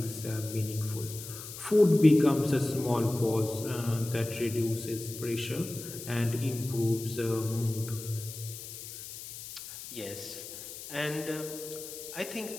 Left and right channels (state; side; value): noise; left; hiss, 11 dB below the sound